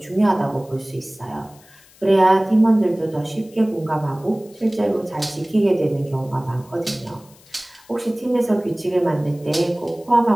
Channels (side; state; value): left; noise; hiss, 27 dB below the sound